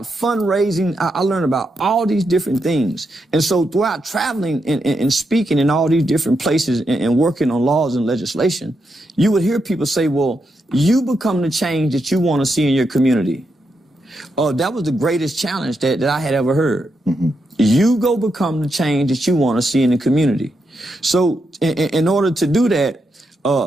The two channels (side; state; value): both; normal; correlation 0.83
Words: fundraising. I learned about all these different things. And so throughout traveling and speaking in all these different places and working on laws and legislation, you would hear people say, well, you become the change that you want to see in your community. That was the greatest challenge that I had ever heard. You go become the change that you want to see in the community. So in order to do that,